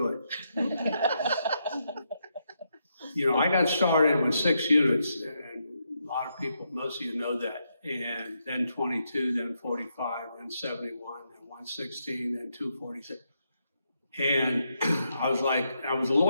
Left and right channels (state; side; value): inverted; both; correlation -0.81